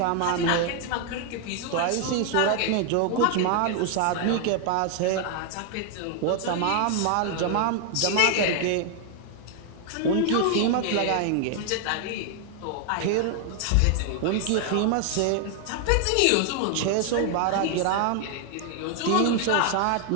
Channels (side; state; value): both; different; correlation 0.00